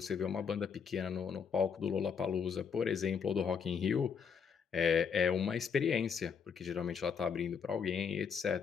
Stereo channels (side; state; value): right; quieter; 6.5 dB